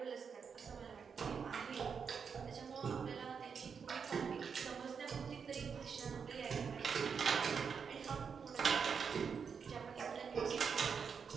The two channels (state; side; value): quieter; left; 6.3 dB